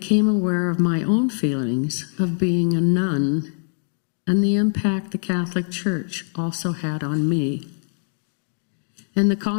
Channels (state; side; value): silent; right; digital silence